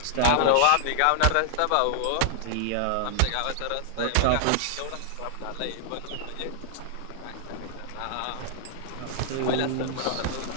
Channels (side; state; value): both; different; correlation -0.01